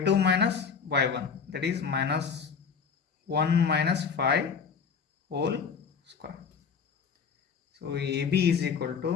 minus y1, that is minus 1 minus 5 whole square. So AB is equal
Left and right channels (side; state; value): right; quieter; 6.2 dB